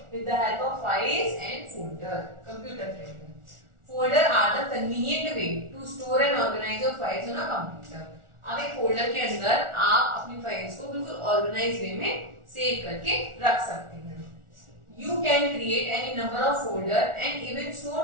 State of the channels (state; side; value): late; left; 1.4 ms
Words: with the help of files and folder. Computer के अंदर folder are the convenient way to store and organise your files on a computer. अब एक फोल्डर के अंदर आप अपनी फाइल्स को बिल्कुल ऑर्गेनाइज वे में सेव करके रख सकते हैं। You can create any number of folder and even store